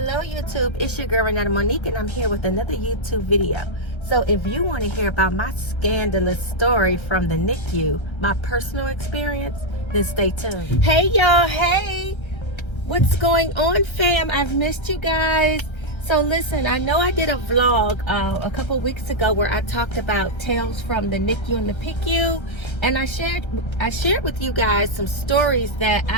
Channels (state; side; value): late; right; 1.3 ms